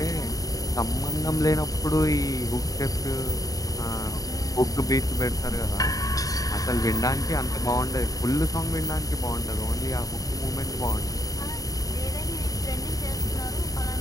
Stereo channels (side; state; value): right; late; 0.17 ms